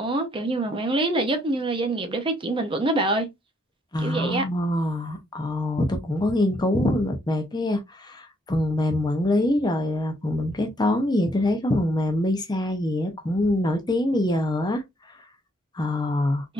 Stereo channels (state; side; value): normal; both; correlation 0.71